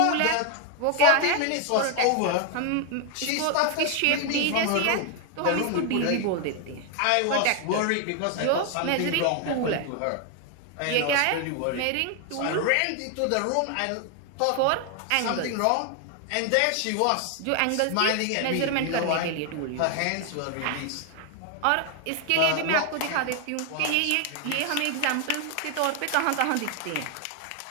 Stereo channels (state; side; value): different; both; correlation 0.01